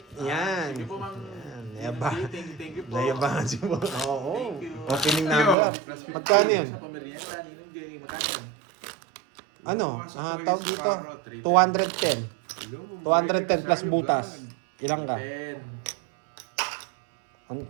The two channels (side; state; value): left; drops out; at 5.6 s